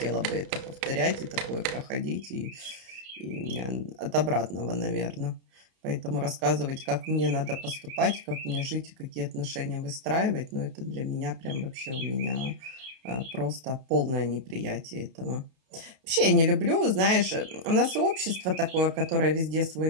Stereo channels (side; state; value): left; late; 31 ms